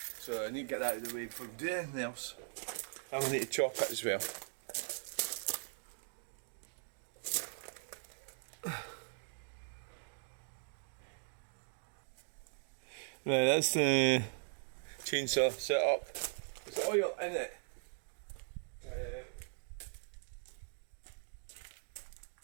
So I need to get that out of the way before we do anything else. I'm going to need to chop it as well. Right, that's the chainsaw set up. There's oil in it.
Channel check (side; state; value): left; silent; digital silence